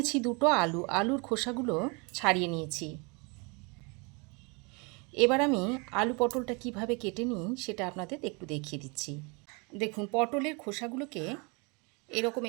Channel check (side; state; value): left; quieter; 30.7 dB